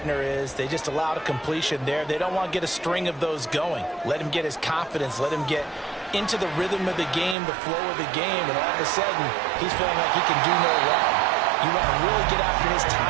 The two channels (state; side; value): drops out; left; at 7.4 s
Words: is they just allowed a completion there. They don't want to get a string of those going. Let him get his confidence. Let him get into the rhythm of the game, the flow of the game, and all of a sudden, he's feeling like he can do no wrong. You want to really get after his